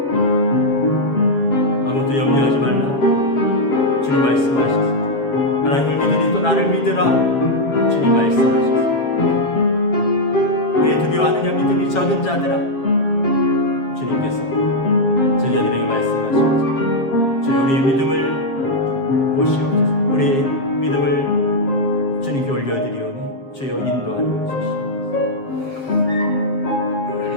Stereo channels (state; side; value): late; right; 7.4 ms